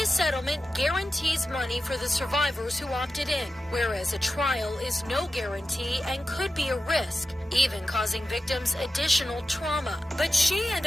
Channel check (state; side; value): normal; both; correlation 0.92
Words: settlement guarantees money for the survivors who opted in, whereas a trial is no guarantee and could be a risk, even causing victims additional trauma. But she and